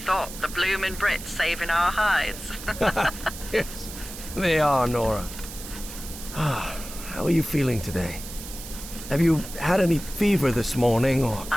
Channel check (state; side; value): noise; right; hiss, 12 dB below the sound